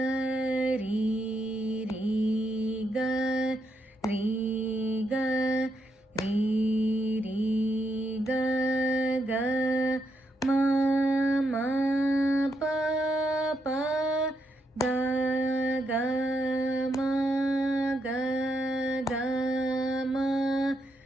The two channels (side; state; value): both; normal; correlation 0.80